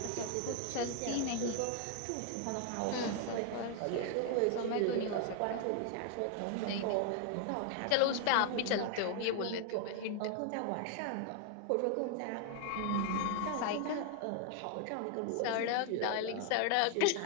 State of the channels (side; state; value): both; different; correlation 0.00